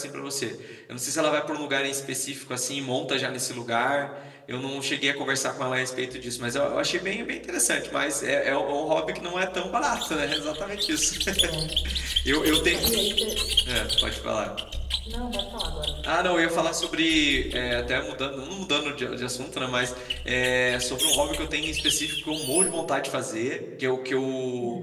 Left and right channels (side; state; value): both; identical; correlation 1.00